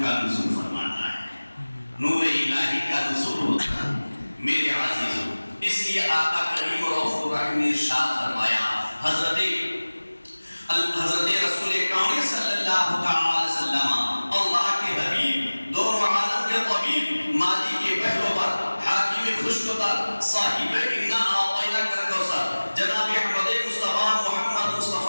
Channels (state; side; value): inverted; both; correlation -1.00